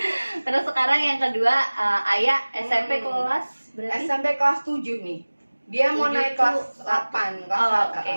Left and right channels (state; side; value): inverted; both; correlation -1.00